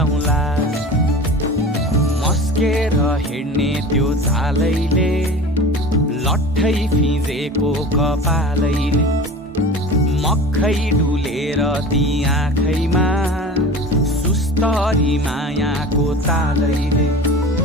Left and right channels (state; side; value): normal; both; correlation 0.36